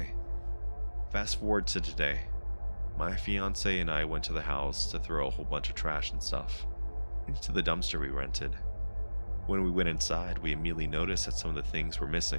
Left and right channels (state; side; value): inverted; both; correlation -1.00